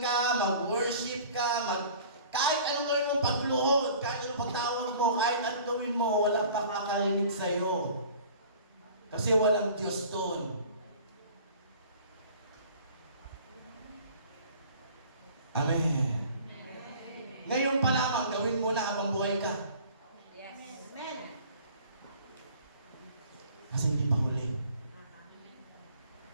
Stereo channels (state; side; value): inverted; both; correlation -0.47